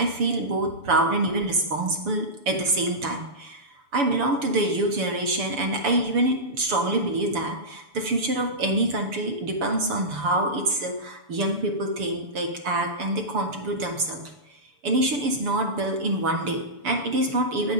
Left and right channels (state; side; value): late; left; 6.9 ms